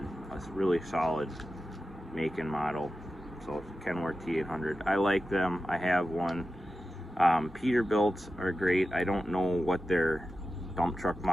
really solid make and model. So Kenworth T800. I like them. I have one. Peterbilts are great. I don't know what their dump truck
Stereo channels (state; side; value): normal; both; correlation 0.93